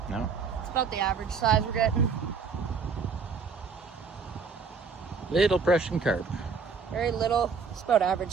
No. It's about the average size we're getting. Little Prussian carp. Very little. It's about average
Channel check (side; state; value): left; quieter; 5.4 dB